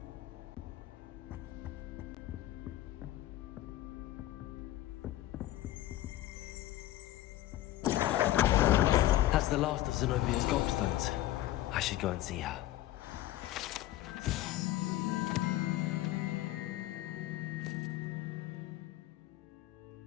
That's the last of Zenobia's gobstones. I should go and see her.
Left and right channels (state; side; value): quieter; right; 15.0 dB